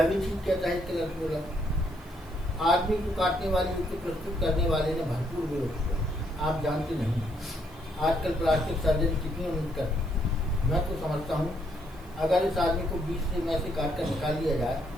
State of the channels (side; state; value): right; noise; hiss, 27 dB below the sound